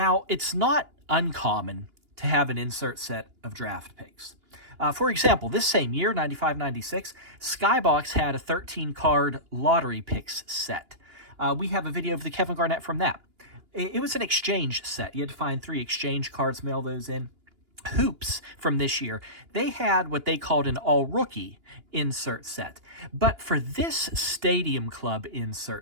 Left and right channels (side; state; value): left; late; 2.9 ms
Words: it's not uncommon to have an insert set of draft picks. For example, this same year, 95-96, Skybox had a 13-card lottery picks set. We have a video of the Kevin Garnett from that. It was an exchange set. You had to find 3 exchange cards, mail those in. Hoops from this year, they had what they called an all-rookie insert set. But for this Stadium Club